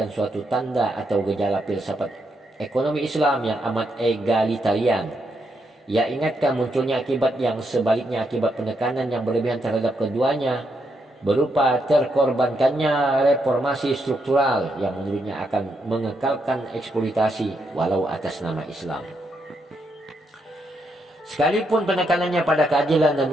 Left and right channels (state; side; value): normal; both; correlation 0.80